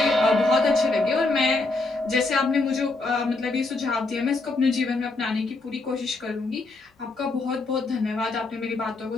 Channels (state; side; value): quieter; right; 3.3 dB